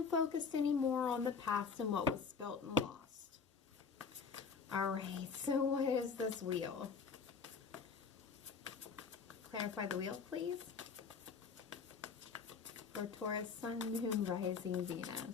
focused anymore on the past and what was spilt and lost. Alright, so what is this wheel? Clarify the wheel, please. For Taurus, Sun, Moon, Rising,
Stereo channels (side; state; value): right; quieter; 5.6 dB